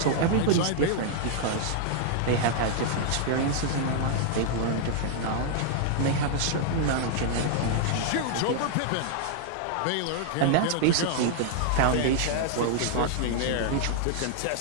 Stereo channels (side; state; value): both; different; correlation -0.01